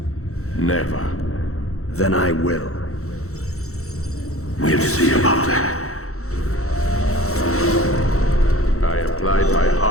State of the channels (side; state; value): right; late; 0.64 ms